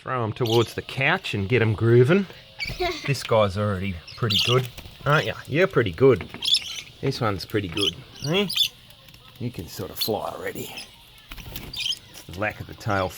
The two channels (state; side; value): identical; both; correlation 1.00